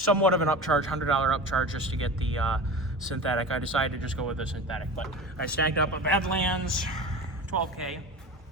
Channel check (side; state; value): both; normal; correlation 0.32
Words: of an upcharge, $100 upcharge just to get the synthetic, I decided to just go with the synthetic. But I snagged up a Badlands 12K.